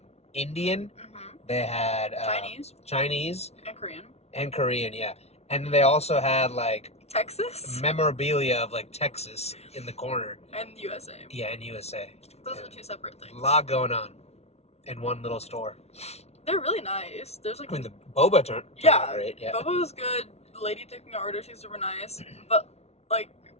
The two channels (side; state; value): right; late; 0.31 ms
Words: Indian, they had Chinese, and Korean, yeah. And they also had like Texas? Memorabilia of like Texas in the corner. And USA. Yeah, in USA. Those are 2 separate things. A lot going on in one little store. They're really nice. There's like the boba turned out great. Yeah. Boba was good. The lady taking our order, she's super nice. But like,